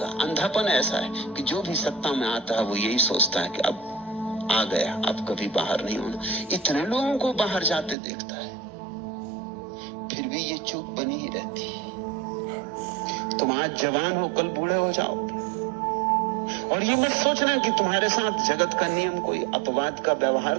अंधापन ऐसा है कि जो भी सत्ता में आता है वो यही सोचता है कि अब आ गया, अब कभी बाहर नहीं होना। इतने लोगों को बाहर जाते देखता है, फिर भी ये चूक बनी ही रहती है। तुम आज जवान हो, कल बूढ़े हो जाओगे। और ये मत सोचना कि तुम्हारे साथ जगत का नियम कोई अपवाद का व्यवहार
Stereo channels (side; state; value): left; drops out; at 8.0 s